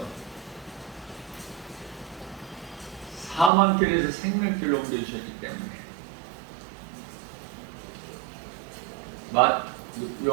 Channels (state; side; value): drops out; left; at 3.5 s